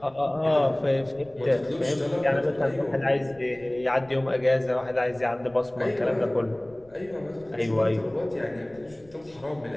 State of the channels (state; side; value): noise; left; rumble, 27 dB below the sound